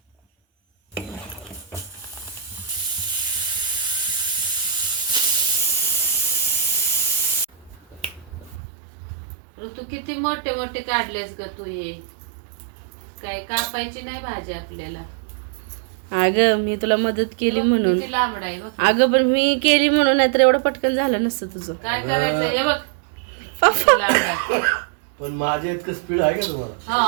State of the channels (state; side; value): drops out; left; at 8.6 s